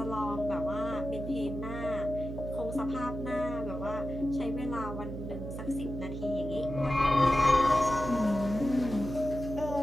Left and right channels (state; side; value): noise; right; hum, 7 dB below the sound